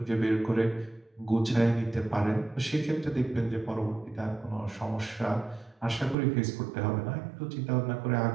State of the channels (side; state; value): left; drops out; at 6.2 s